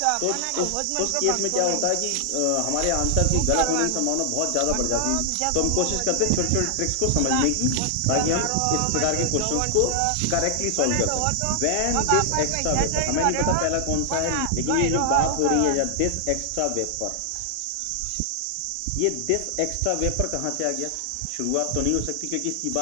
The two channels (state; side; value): different; both; correlation 0.00